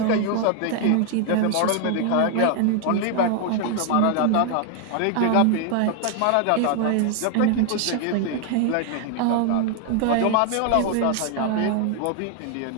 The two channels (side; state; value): both; different; correlation 0.00